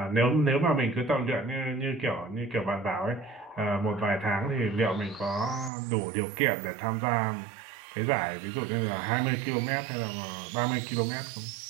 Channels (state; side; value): drops out; left; at 5.7 s